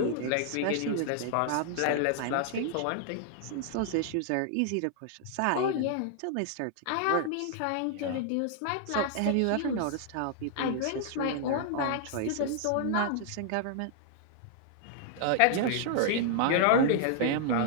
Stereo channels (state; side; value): different; both; correlation -0.01